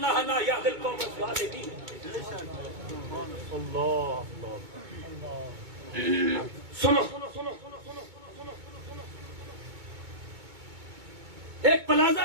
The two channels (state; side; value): late; left; 2.2 ms